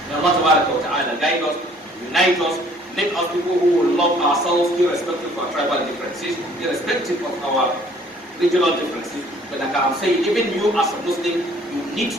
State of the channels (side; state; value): both; normal; correlation 0.57